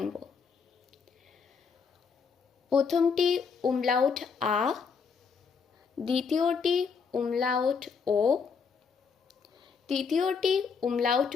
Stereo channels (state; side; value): quieter; right; 5.7 dB